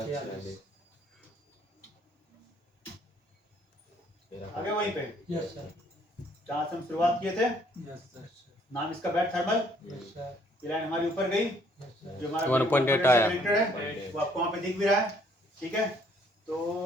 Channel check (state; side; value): normal; both; correlation 0.64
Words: आगे वहीं पे जहाँ से हम शुरुआत किए थे, नाम इसका बैट थर्मल। ये लाइन हमारी ऊपर गई, जो हमारा 1.8 आया। कनेक्टेड है, वो आपको वहाँ पे दिख भी रहा है, ठीक है। तो